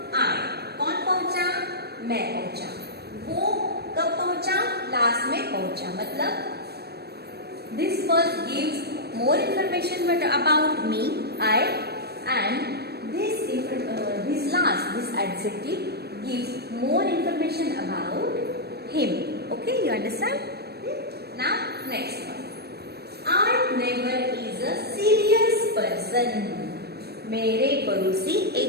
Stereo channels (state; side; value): late; left; 0.47 ms